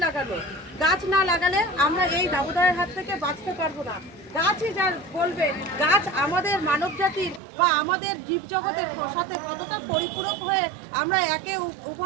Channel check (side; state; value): left; drops out; at 7.4 s